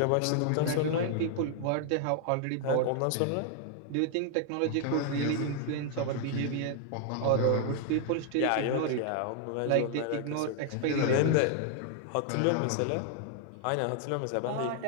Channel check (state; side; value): different; both; correlation 0.00